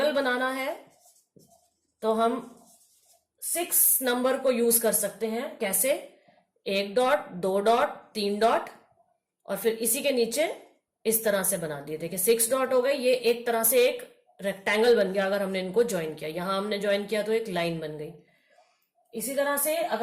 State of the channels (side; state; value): both; identical; correlation 1.00